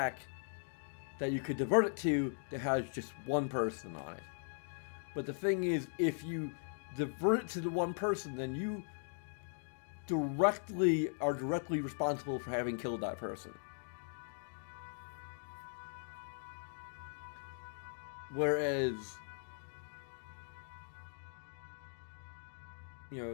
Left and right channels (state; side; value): silent; right; digital silence